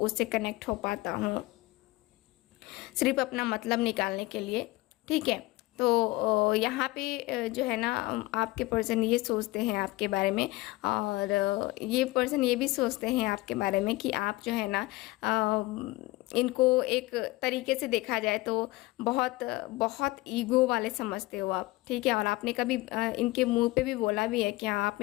कनेक्ट हो पाता हूँ सिर्फ अपना मतलब निकालने के लिए, ठीक है। यहाँ पे जो है ना आपके पर्सन ये सोचते हैं आपके बारे में, और ये पर्सन ये भी सोचते हैं आपके बारे में कि आप जो है ना इनको एक तरीके से देखा जाए तो बहुत बहुत ईगो वाले समझते हो आप, ठीक है। और आपने कभी इनके मुंह पे भी बोला भी है कि हाँ आप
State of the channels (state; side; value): quieter; right; 20.6 dB